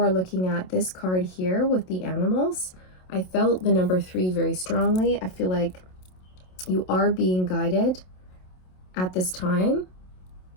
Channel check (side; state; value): right; late; 27 ms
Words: looking at this card here with the animals, I felt the number 3 very strongly. I feel like you are being guided at this time